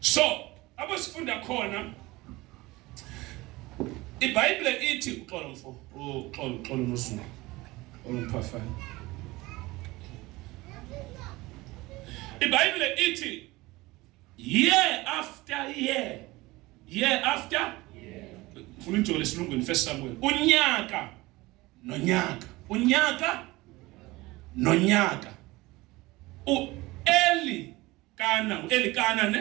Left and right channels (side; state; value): left; quieter; 20.7 dB